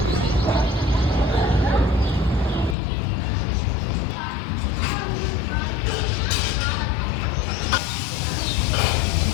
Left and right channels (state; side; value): drops out; right; at 2.8 s